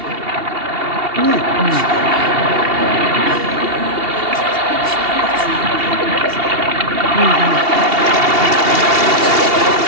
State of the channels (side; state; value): left; late; 2.8 ms